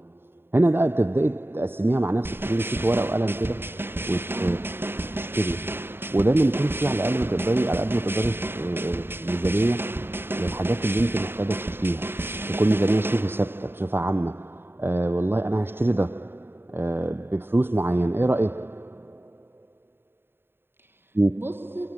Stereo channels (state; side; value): late; left; 0.11 ms